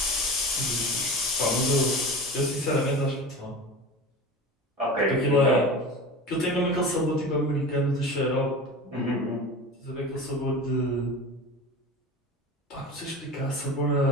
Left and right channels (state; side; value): normal; both; correlation 0.32